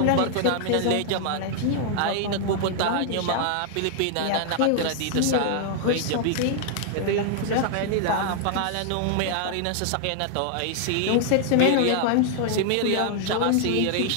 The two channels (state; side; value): different; both; correlation -0.01